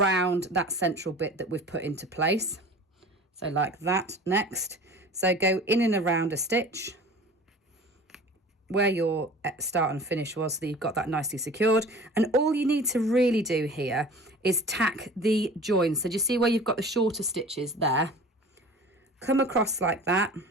that central bit that we've put into place. So like that next. So go in and around a stitch where your start and finish was, so that you've got that nicely secured. And all you need to really do here is tack the joins. So do you see where you've got the shorter stitches there? Come across like that,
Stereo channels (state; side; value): normal; both; correlation 0.41